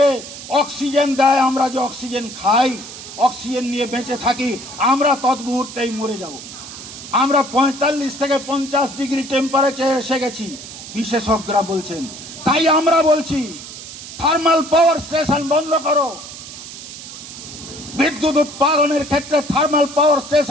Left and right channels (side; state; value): right; noise; hiss, 13 dB below the sound